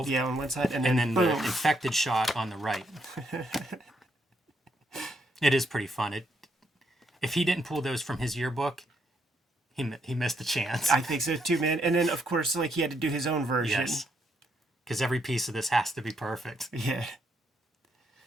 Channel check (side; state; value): both; normal; correlation 0.75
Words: Yeah, on one side. And then the infected shot on the right. It is pretty fun. If he didn't pull those from his yearbook, he missed the chance. I think so too, man. And then, of course, like he had to do his own version. Yes. Because every piece of this has to be perfect. Yeah.